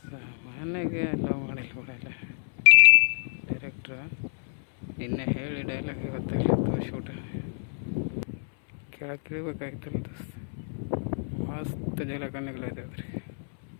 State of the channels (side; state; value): right; silent; 59 dB below the other